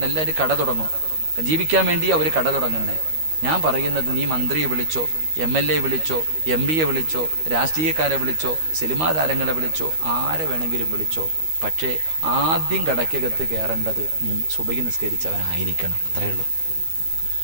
എല്ലാവരും കട തുടങ്ങും, ജീവിക്കാൻ വേണ്ടി അവർ കട തുടങ്ങുന്നേ. ഞാൻ പറയുന്നത്, നീ മന്ത്രിയെ വിളിച്ചോ, MLA വിളിച്ചോ, MP വിളിച്ചോ, രാഷ്ട്രീയക്കാരെ വിളിച്ചോ, സിനിമാ താരങ്ങളെ വിളിച്ചോ, ആരെ വേണമെങ്കിലും വിളിച്ചോ. പക്ഷേ ആദ്യം കടയ്ക്കകത്ത് കയറേണ്ടത് നീ സുബഹി നിസ്കരിച്ചവനായിരിക്കണം. അത്രയേ ഉള്ളൂ.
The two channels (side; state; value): left; late; 13 ms